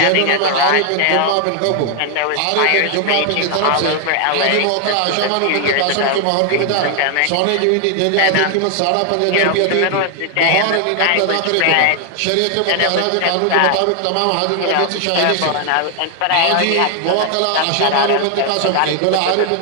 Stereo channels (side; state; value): both; different; correlation 0.00